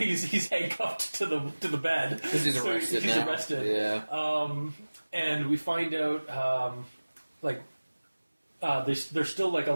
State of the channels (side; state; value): both; inverted; correlation -1.00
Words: handcuffed to the bed because he's arrested. He's arrested. Yeah. And we find out there's still like a